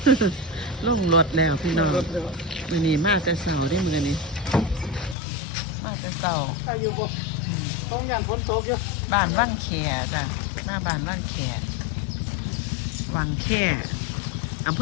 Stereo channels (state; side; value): drops out; right; at 5.2 s